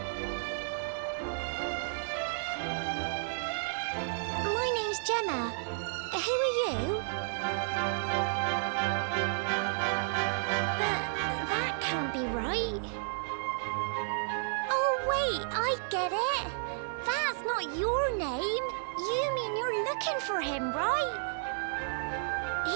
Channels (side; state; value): left; silent; digital silence